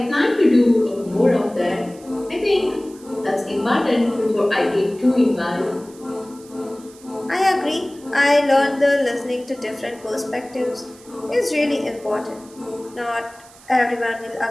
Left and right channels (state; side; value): noise; right; hiss, 24 dB below the sound